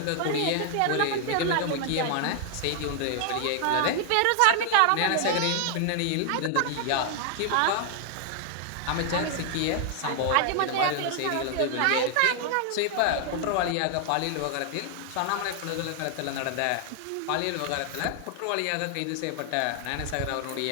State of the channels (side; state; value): both; different; correlation 0.00